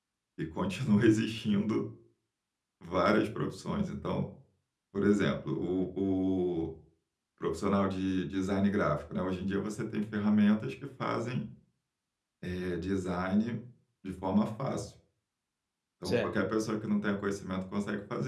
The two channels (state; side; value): identical; both; correlation 1.00